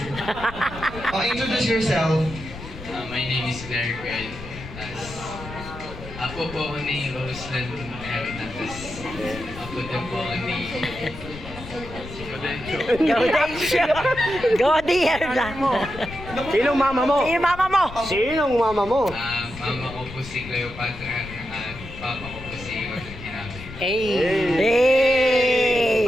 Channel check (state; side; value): noise; left; rumble, 13 dB below the sound